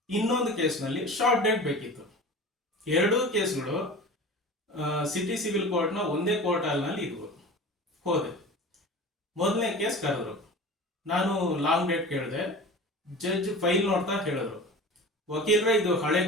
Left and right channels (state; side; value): normal; both; correlation 0.36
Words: ಇನ್ನೊಂದು ಕೇಸ್ನಲ್ಲಿ ಶಾರ್ಟ್ ಡೇಟ್ ಬೇಕಿತ್ತು. ಎರಡೂ ಕೇಸ್ಗಳು ಸಿಟಿ ಸಿವಿಲ್ ಕೋರ್ಟ್ನ ಒಂದೇ ಕೋರ್ಟ್ ಹಾಲ್ನಲ್ಲಿ ಇದ್ವು. ಹೋದೆ, ಮೊದಲನೇ ಕೇಸ್ ಕರೆದ್ರು. ನಾನು ಲಾಂಗ್ ಡೇಟ್ ಕೇಳಿದೆ. ಜಡ್ಜ್ ಫೈಲ್ ನೋಡ್ತಾ ಹೇಳಿದ್ರು, ವಕೀಲರೇ, ಇದು ಹಳೆ